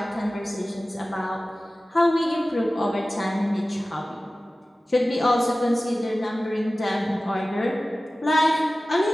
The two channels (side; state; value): both; normal; correlation 0.96